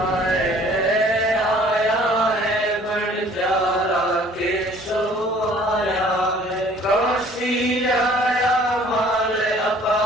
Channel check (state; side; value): normal; both; correlation 0.54